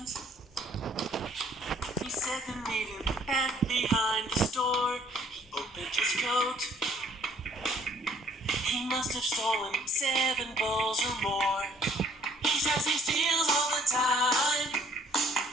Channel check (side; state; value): both; normal; correlation 0.61